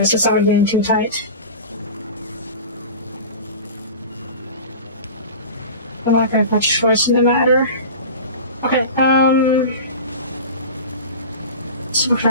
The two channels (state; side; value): inverted; both; correlation -0.33